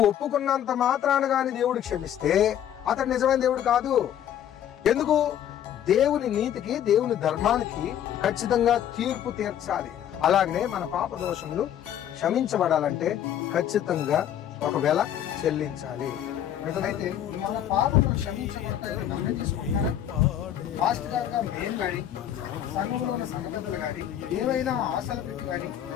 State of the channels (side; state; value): right; quieter; 10.5 dB